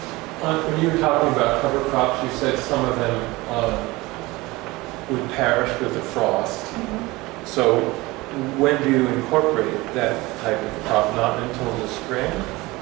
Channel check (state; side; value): quieter; left; 21.4 dB